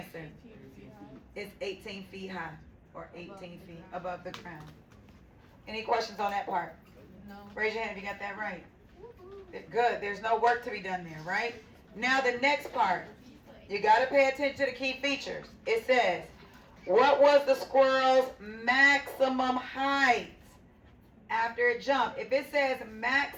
It's 18 feet high, or 18 feet above the ground. Any questions on that part? No. Raise your hand if you got that right. Good. There's no work to be done there, right? Now the next part. You got to pay attention to the key features. It says, what was the squirrel's maximum height after it jumped? If it says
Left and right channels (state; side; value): identical; both; correlation 1.00